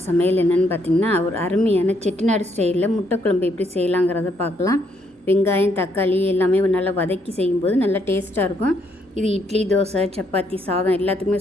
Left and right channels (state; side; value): normal; both; correlation 0.72